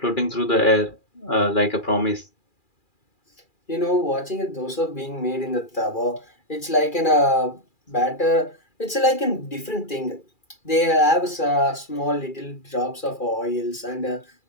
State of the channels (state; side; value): late; right; 2.4 ms